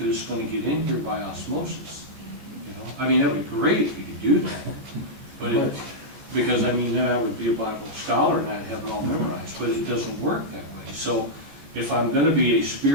it's gonna get in here by osmosis, I mean, that'd be great if you could do that, but because then I would be a Bible scholar and I'd have it all memorized, but it doesn't work that way. So if I'm gonna be a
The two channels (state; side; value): late; left; 15 ms